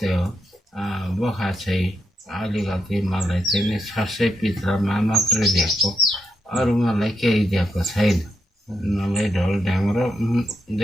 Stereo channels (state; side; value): normal; both; correlation 0.83